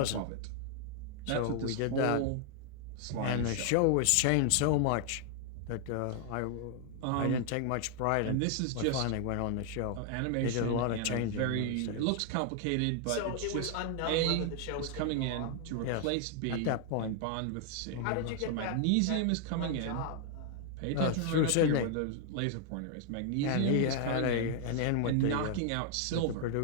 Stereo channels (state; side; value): different; both; correlation 0.00